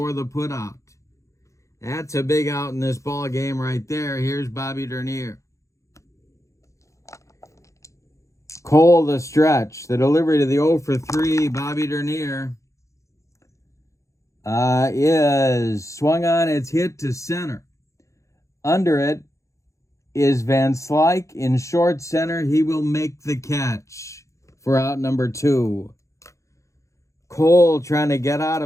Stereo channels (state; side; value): late; right; 0.15 ms